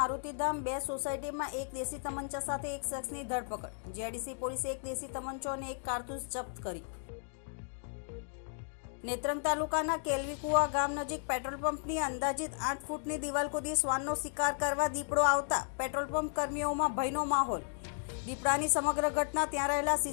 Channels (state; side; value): silent; right; digital silence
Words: 2 સોસાયટીમાં એક દેશી તમંચા સાથે એક શખ્સની ધરપકડ. જીઆઈડીસી પોલીસે એક દેશી તમંચો અને એક કારતૂસ જપ્ત કરી. નેત્રંગ તાલુકાના કેલવીકુવા ગામ નજીક પેટ્રોલ પંપની અંદાજિત 8 ફૂટની દિવાલ કૂદી શ્વાનનો શિકાર કરવા દીપડો આવતા પેટ્રોલ પંપ કર્મીઓમાં ભયનો માહોલ. દીપડાની સમગ્ર ઘટના ત્યાં રહેલા